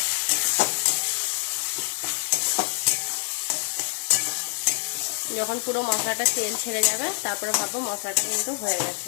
যখন পুরো মশলাটা তেল ছেড়ে যাবে তারপরে ভাববো মশলাটা কিন্তু হয়ে গেছে।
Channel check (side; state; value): right; silent; 61 dB below the other